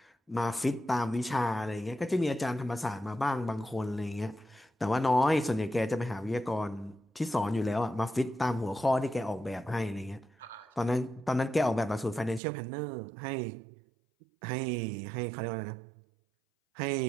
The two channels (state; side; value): drops out; left; at 12.4 s